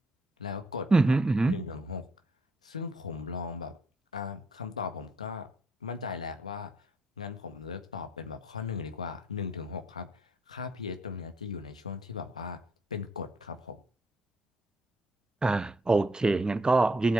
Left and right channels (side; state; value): both; normal; correlation 0.73